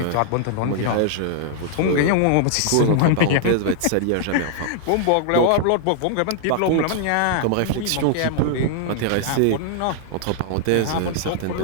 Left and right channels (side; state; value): both; different; correlation -0.01